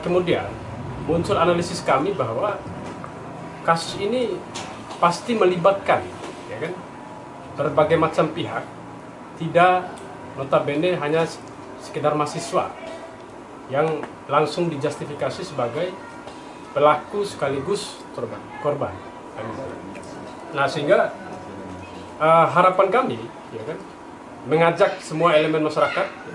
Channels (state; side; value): identical; both; correlation 1.00